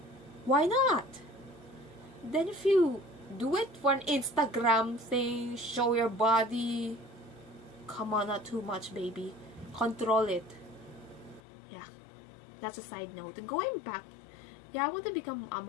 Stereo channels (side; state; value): right; drops out; at 11.4 s